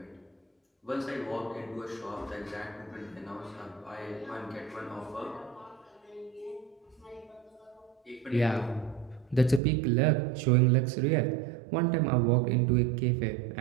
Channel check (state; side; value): drops out; left; at 9.6 s